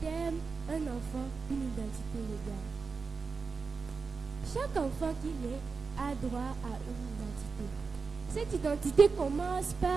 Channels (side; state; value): left; quieter; 4.7 dB